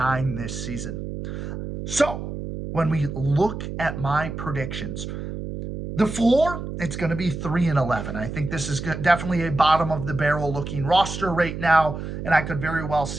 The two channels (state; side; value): noise; right; hum, 7 dB below the sound